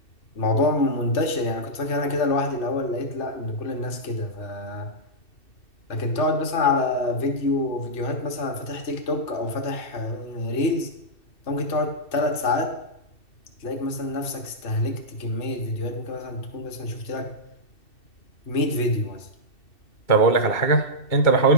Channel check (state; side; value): late; right; 2.7 ms